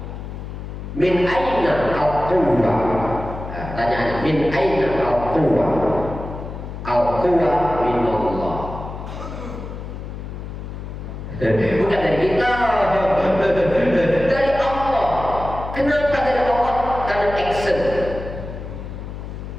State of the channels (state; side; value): noise; left; hum, 9 dB below the sound